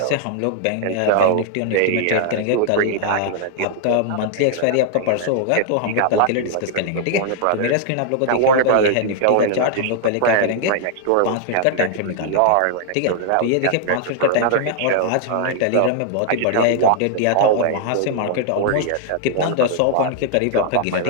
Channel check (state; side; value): different; both; correlation -0.01